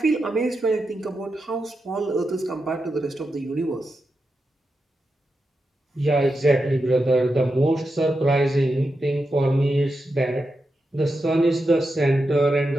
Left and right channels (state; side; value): normal; both; correlation 0.88